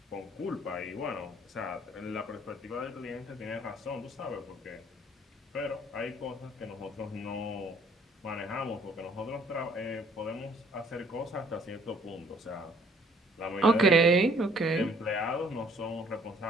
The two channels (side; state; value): both; normal; correlation 0.60